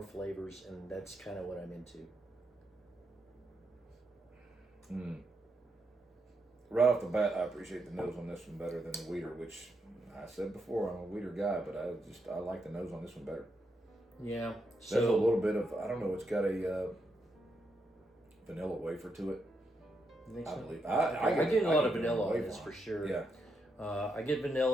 flavors, and that's kind of what I'm into. Right off the bat, I appreciate the nose on this one better than the wheater, which I said before, I'm a wheater guy, but I like the nose on this one better. Yeah. There's a little bit of, I don't know, it's got a vanilla wafer to it. You think I so? believe. I get a lot of vanilla on this for sure. Yeah. I get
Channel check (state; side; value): normal; both; correlation 0.82